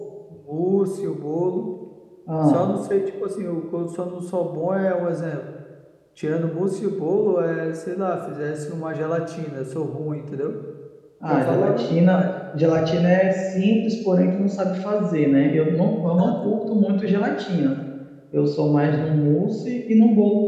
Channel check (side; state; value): both; identical; correlation 1.00